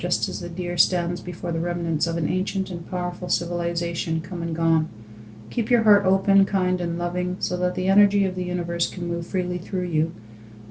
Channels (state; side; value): identical; both; correlation 1.00